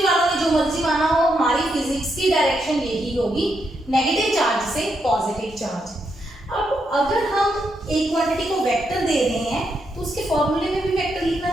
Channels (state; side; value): normal; both; correlation 0.80